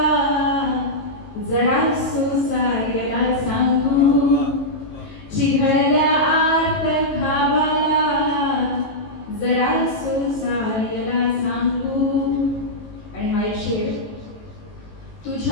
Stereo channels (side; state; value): right; late; 19 ms